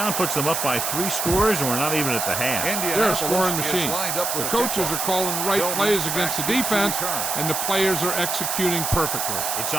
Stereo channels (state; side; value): noise; right; hiss, 1 dB below the sound